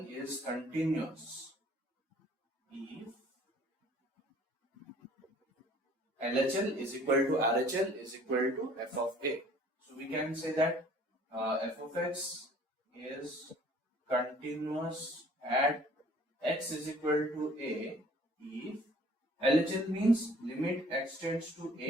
is continuous if LHL is equal to RHL is equal to f of a. So we can say that f of x is continuous at x is equal to a if LHL means limit x tends to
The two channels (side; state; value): both; normal; correlation 0.54